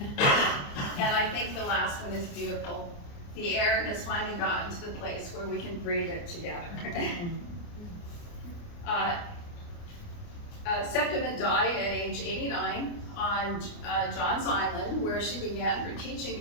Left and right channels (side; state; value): right; late; 29 ms